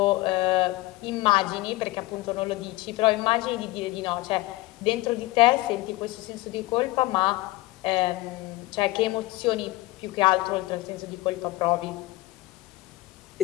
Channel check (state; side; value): quieter; right; 20.2 dB